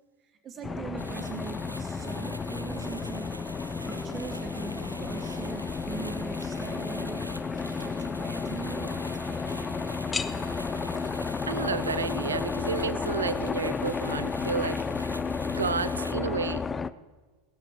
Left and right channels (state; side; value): normal; both; correlation 0.36